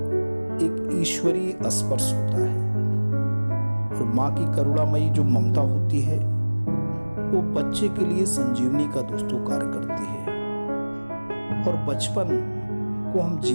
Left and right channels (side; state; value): both; inverted; correlation -1.00